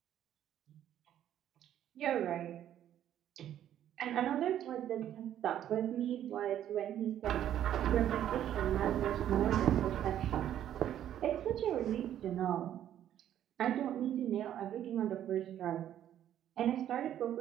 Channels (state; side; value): quieter; left; 11.0 dB